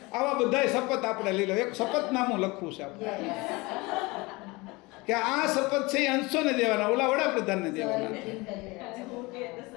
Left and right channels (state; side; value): quieter; right; 24.0 dB